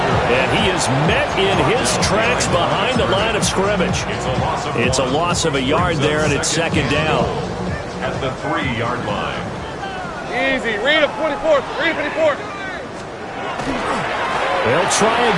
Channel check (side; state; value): both; identical; correlation 1.00